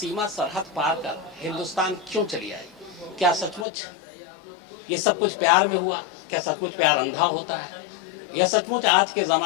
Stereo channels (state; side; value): drops out; right; at 3.7 s